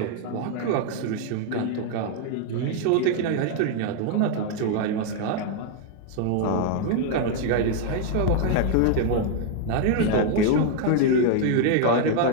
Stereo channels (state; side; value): different; both; correlation 0.00